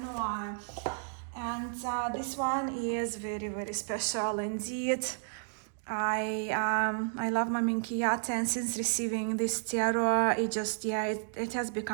And this one is very, very special indeed. I love my Minchiate, and since receiving this tarot, it has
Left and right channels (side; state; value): left; silent; digital silence